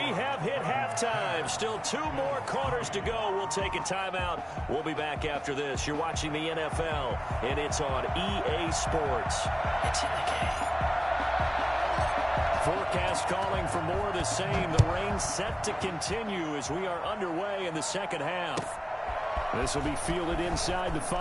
have hit halftime. Still 2 more quarters to go. We'll take a timeout. We'll be back after this. You're watching the NFL, and it's on EA Sports. It's in the game. Forecast calling for more of the same. The rain set to continue as we are underway in the second half. This will be fielded inside the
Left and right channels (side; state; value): both; identical; correlation 1.00